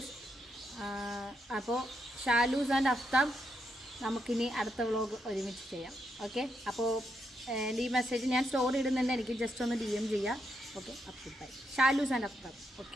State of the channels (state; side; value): normal; both; correlation 0.80